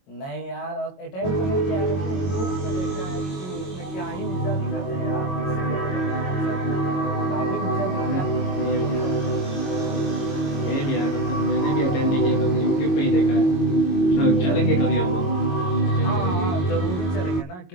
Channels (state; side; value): late; right; 22 ms